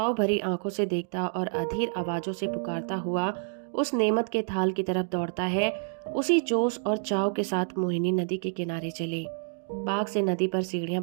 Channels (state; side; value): silent; left; digital silence